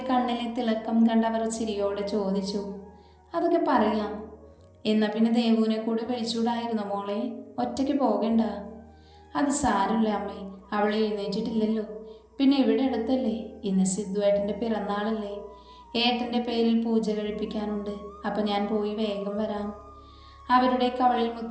കണ്ണിലെ തിളക്കം കണ്ടവർ ചിരിയോടെ ചോദിച്ചു. അതൊക്കെ പറയാം. എന്നാൽ പിന്നെ ദേവുവിനെ കൂടി വിളിച്ചുകൂടായിരുന്നു മോളെ? ഒറ്റയ്ക്ക് പോകണ്ട. അത് സാരമില്ല അമ്മേ, അവൾ എഴുന്നേറ്റിട്ടില്ലല്ലോ. പിന്നെ ഇവിടെ അടുത്തല്ലേ, ഇന്ന് സിദ്ധുവേട്ടൻ്റെ പിറന്നാളല്ലേ, ഏട്ടൻ്റെ പേരിൽ പൂജ കഴിപ്പിക്കാനുണ്ട്. അപ്പം ഞാൻ പോയി വേഗം വരാം. അവരുടെ കവളിൽ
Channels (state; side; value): identical; both; correlation 1.00